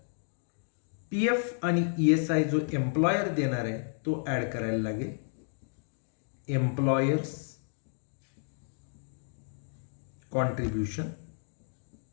PF आणि ESI जो एम्प्लॉयर देणार आहे तो ॲड करायला लागेल. एम्प्लॉयर्स कॉन्ट्रीब्युशन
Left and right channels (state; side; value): silent; right; digital silence